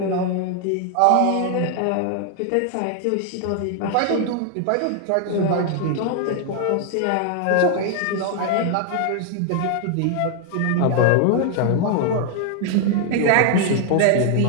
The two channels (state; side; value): different; both; correlation 0.00